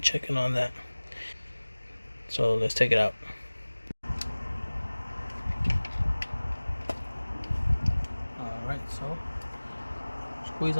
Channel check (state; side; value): inverted; both; correlation -1.00